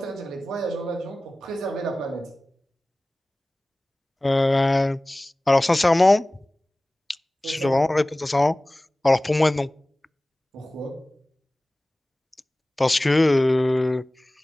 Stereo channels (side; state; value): both; normal; correlation 0.98